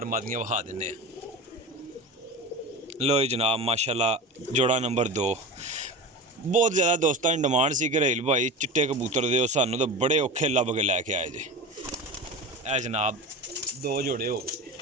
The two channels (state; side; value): normal; both; correlation 0.29